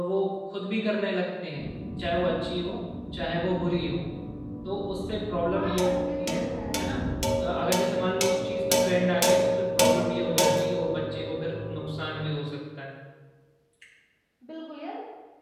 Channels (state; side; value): identical; both; correlation 1.00